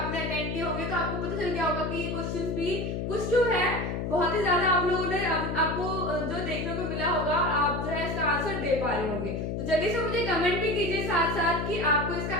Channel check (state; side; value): noise; left; hum, 2 dB below the sound